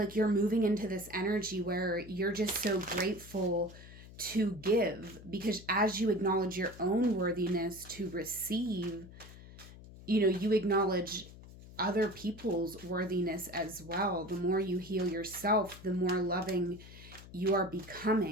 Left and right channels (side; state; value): left; noise; hum, 17 dB below the sound